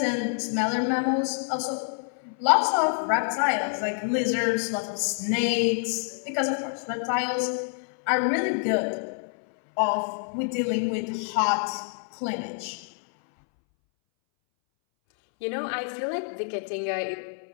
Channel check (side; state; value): right; silent; 60 dB below the other